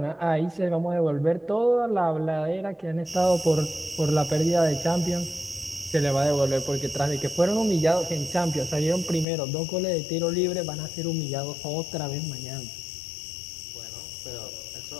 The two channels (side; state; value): right; drops out; at 9.2 s